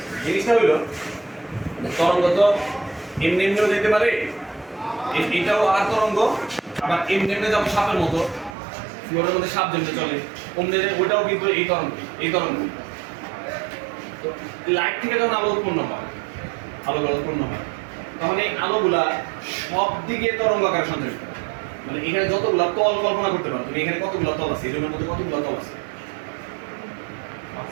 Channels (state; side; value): drops out; left; at 8.6 s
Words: জিনিসটা হইলো তরঙ্গ তো এমনি এমনিও যেতে পারে, এটাও আর তরঙ্গ, আবার এমনি এমনি যেমন সাপের মতো ফ্লোরের মধ্যে সাপ যেমনি চলে অমনি ওটাও কিন্তু এই তরঙ্গ। তো লাইট থেকে যখন আলো উৎপন্ন হয়, উৎপন্ন হয়, তখন এই আলোগুলা সব দিকে তরঙ্গ আকারে সঞ্চারিত হয়। মানে এখানে যতগুলা তল কল্পনা করতে পারো তুমি, এখানে কতগুলা তল আছে, এই রুমের মধ্যে কতগুলা তল আছে?